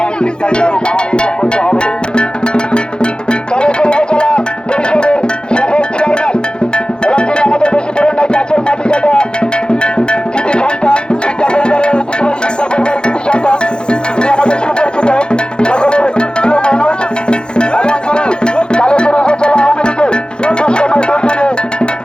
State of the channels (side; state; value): right; late; 0.049 ms